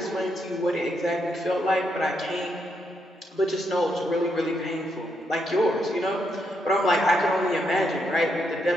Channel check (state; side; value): normal; both; correlation 0.79